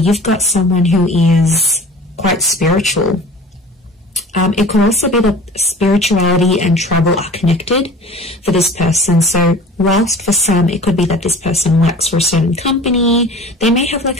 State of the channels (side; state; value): both; normal; correlation 0.42